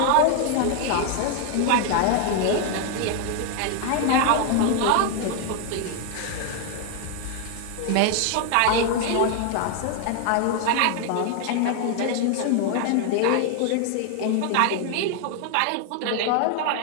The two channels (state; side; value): different; both; correlation 0.00